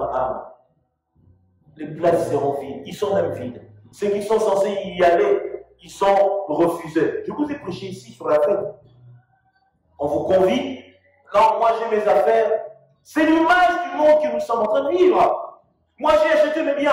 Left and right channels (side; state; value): both; identical; correlation 1.00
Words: les places seront vides. Ils sont même vides. Ceux qui sont censés y aller, ils sont refusés. Je vous ai prêché ici sur la fête. On vous convie. Non, moi j'ai mes affaires. C'est l'image du monde que nous sommes en train de vivre. Moi j'ai acheté mes